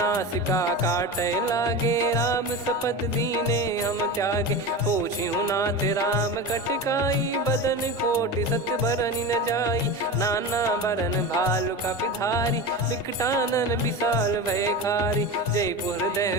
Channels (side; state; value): both; normal; correlation 0.26